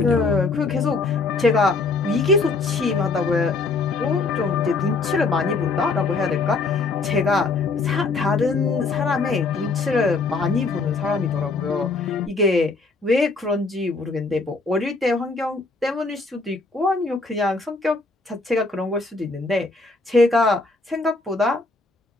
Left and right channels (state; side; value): quieter; right; 3.8 dB